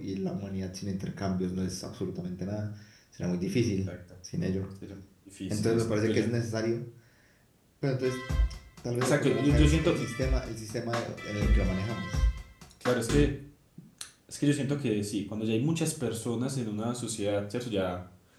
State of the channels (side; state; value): both; identical; correlation 1.00